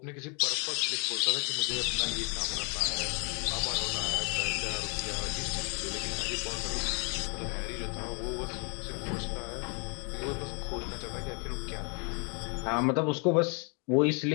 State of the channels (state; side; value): quieter; right; 35.9 dB